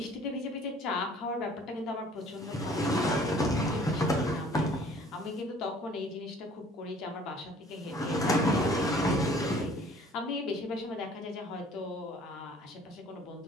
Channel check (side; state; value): both; normal; correlation 0.54